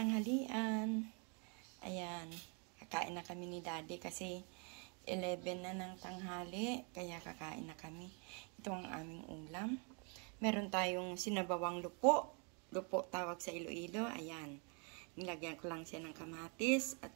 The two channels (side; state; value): left; quieter; 36.0 dB